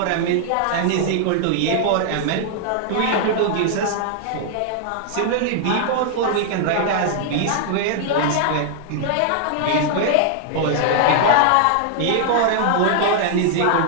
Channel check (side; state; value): both; different; correlation 0.00